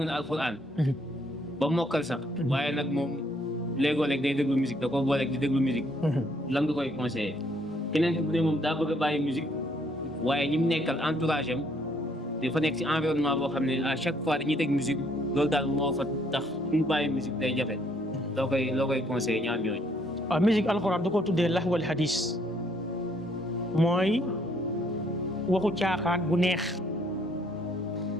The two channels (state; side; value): normal; both; correlation 0.67